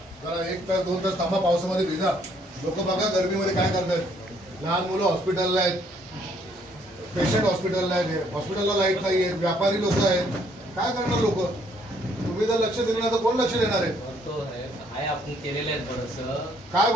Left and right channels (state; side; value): normal; both; correlation 0.66